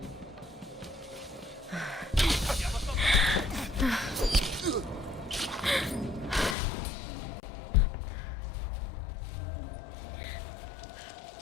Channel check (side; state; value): right; drops out; at 6.6 s